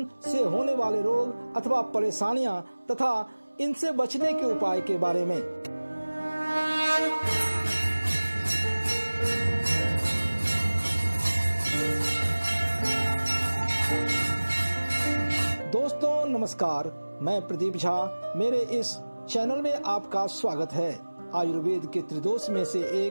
से होने वाले रोग अथवा परेशानियां तथा इनसे बचने के उपाय के बारे में। दोस्तों नमस्कार, मैं प्रदीप झा। मेरे इस चैनल में आपका स्वागत है। आयुर्वेद के त्रिदोष में से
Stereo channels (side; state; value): both; inverted; correlation -1.00